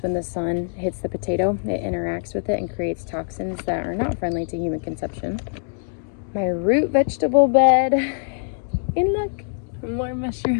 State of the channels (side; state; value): right; silent; digital silence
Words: when the sun hits the potato, it interacts with it and creates toxins that are not friendly to human consumption. My root vegetable bed, and look, more